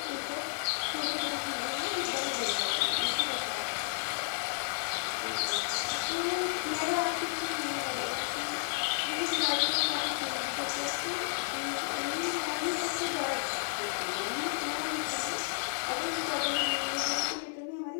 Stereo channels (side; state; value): right; silent; 56 dB below the other